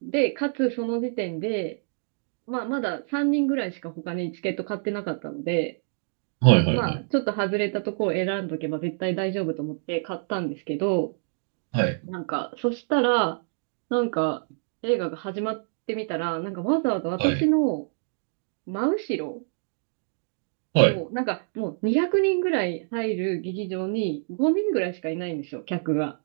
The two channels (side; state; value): left; silent; digital silence